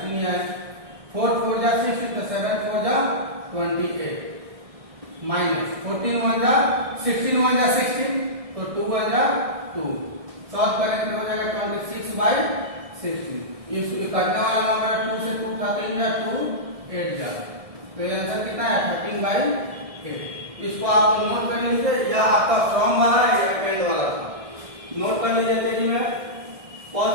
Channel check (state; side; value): late; left; 1.6 ms